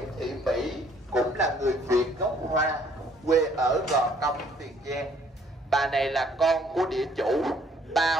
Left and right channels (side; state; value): both; normal; correlation 0.62